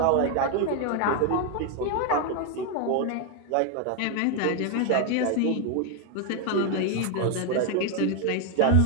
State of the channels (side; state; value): both; different; correlation 0.01